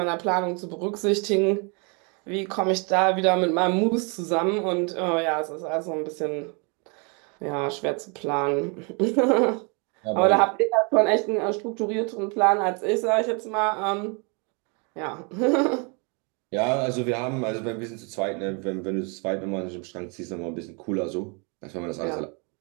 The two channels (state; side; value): quieter; left; 34.0 dB